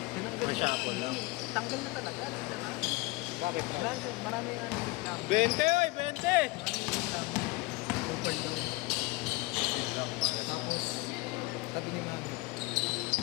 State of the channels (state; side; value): quieter; right; 22.7 dB